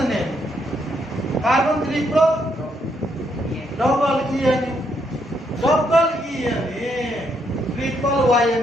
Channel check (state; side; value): normal; both; correlation 0.75